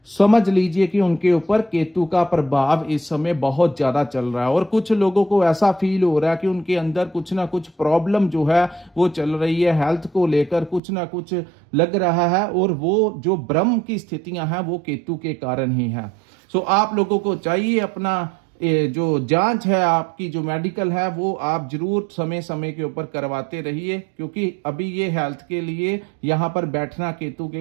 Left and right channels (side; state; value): left; drops out; at 10.8 s